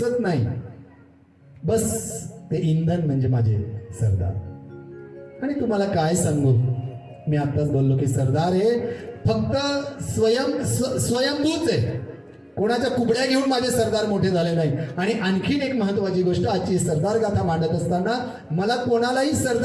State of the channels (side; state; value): both; identical; correlation 1.00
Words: नाही, बस ते इंधन म्हणजे माझे सरदार. आणि तुम्हाला काय सांगू, मी आताच बोललो की सरदार हे फक्त स्वयंभूच आहे, कोणाच्या कुबड्या घेऊन माझे सरदार मोठे झाले नाही. आणि आणखीन एक महत्वाची गोष्ट, आजची सरदार गाथा मांडत असताना मला कोणालाही